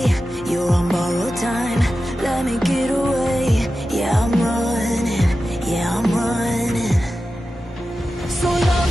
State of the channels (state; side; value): normal; both; correlation 0.93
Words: You're on borrowed time, let me get away. Yeah, I'm running, yeah, I'm running. So